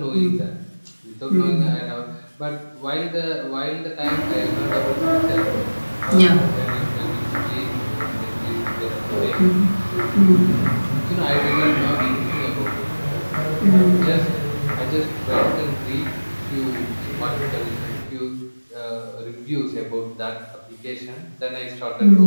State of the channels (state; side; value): inverted; both; correlation -1.00